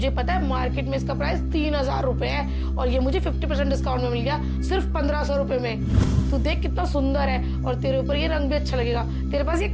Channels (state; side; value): identical; both; correlation 1.00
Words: पता है मार्केट में इसका प्राइस 3,000 रुपए है और ये मुझे 50% डिस्काउंट में मिल गया सिर्फ 1,500 रुपए में। तू देख कितना सुंदर है, और तेरे ऊपर ये रंग भी अच्छा लगेगा। तेरे पास ये